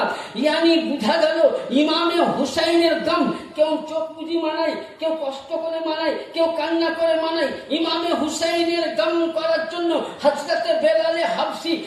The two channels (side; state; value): both; identical; correlation 1.00